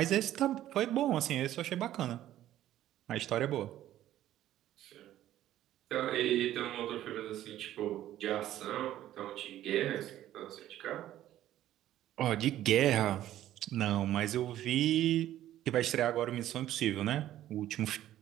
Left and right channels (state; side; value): quieter; left; 13.0 dB